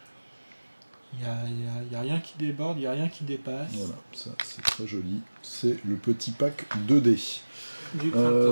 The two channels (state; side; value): inverted; both; correlation -1.00